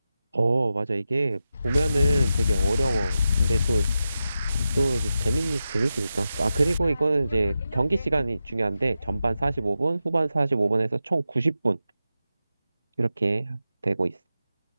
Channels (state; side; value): inverted; both; correlation -0.90